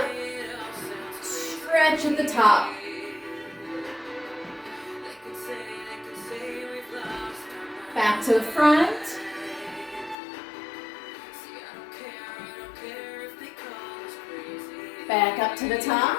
Stretch at the top. Back to the front. Back up to the top.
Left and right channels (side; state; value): right; drops out; at 10.2 s